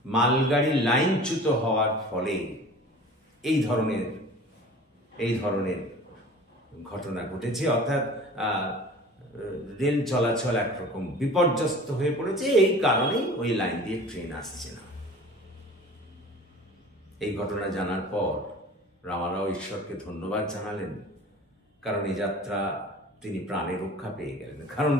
মালগাড়ি লাইনচ্যুত হওয়ার ফলে এই ধরনের ঘটনা ঘটেছে, অর্থাৎ রেল চলাচল একরকম বিপর্যস্ত হয়ে পড়েছে। এই কারণেই ওই লাইন দিয়ে ট্রেন আসছে না। এই ঘটনা জানার পর রামারাও ঈশ্বরকে ধন্যবাদ জানালেন, কারণ এই যাত্রা তিনি প্রাণে রক্ষা পেয়ে গেলেন। কারণ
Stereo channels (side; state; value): both; normal; correlation 0.42